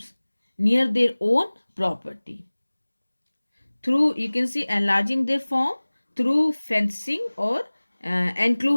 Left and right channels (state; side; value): inverted; both; correlation -1.00